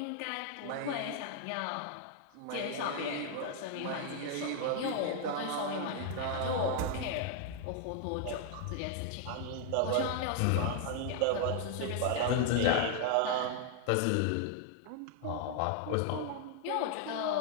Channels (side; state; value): both; different; correlation 0.00